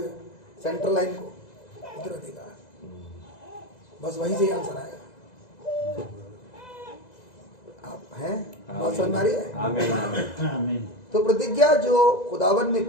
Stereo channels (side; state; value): right; late; 2.0 ms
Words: सेंट्रल लाइन को उत्तराधिकार, बस वहीं से ही आंसर आएगा। आप हैं, बात समझ में आ रही है? आमीन आमीन। तो प्रतिज्ञा जो खुदावन ने